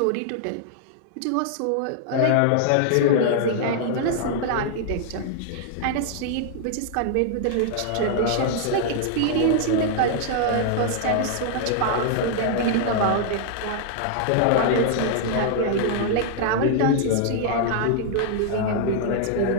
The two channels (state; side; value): different; both; correlation -0.01